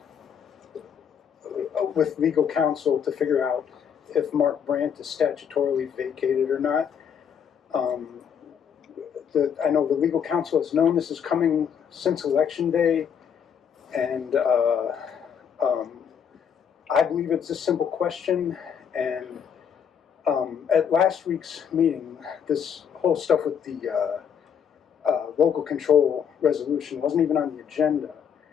with legal counsel to figure out if Mark Brant is statutorily vacated or not. I know the legal counsel has known this is coming since Election Day, and I believe it's a simple question. And at last week's meeting, this whole stuff with the local control resolution wasn't even on the agenda.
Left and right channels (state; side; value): quieter; right; 7.7 dB